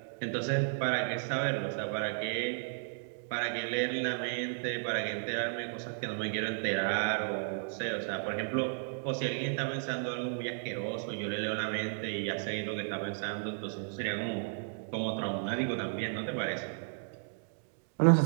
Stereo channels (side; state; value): left; silent; digital silence